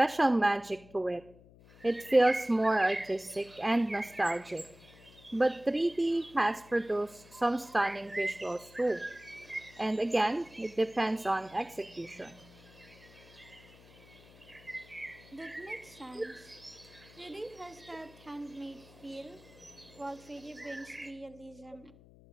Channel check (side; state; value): left; noise; hum, 23 dB below the sound